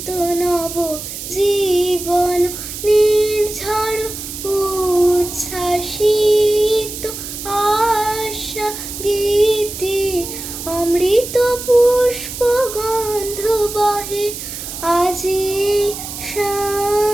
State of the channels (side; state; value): right; noise; hiss, 9 dB below the sound